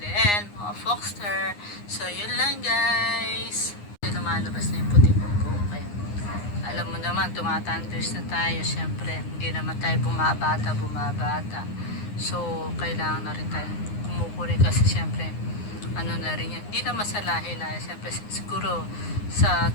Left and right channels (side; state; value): right; late; 9.7 ms